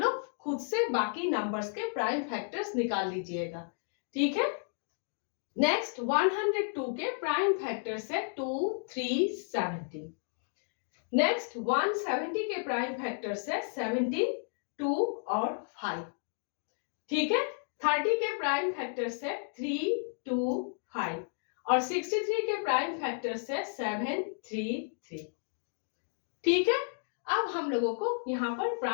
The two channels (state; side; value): silent; right; 56 dB below the other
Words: खुद से बाकी नंबर्स के प्राइम फैक्टर्स निकाल लीजिएगा। ठीक है, नेक्स्ट 102 के प्राइम फैक्टर्स है 2, 3, 17। नेक्स्ट 170 के प्राइम फैक्टर्स है 17, 2 और 5। ठीक है, 30 के प्राइम फैक्टर्स है 3, 2, 5 और 63 के प्राइम फैक्टर्स है 7, 3, 3। ठीक है, अब हम लोगों को यहां पर